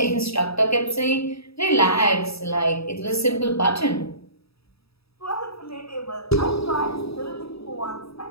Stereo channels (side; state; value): right; late; 0.77 ms